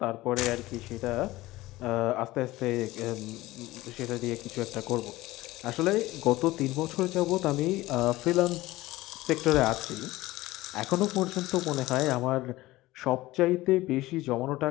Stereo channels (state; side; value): quieter; right; 18.2 dB